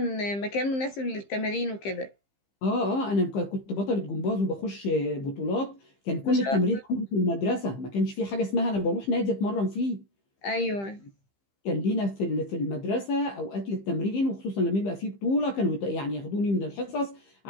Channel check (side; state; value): right; late; 15 ms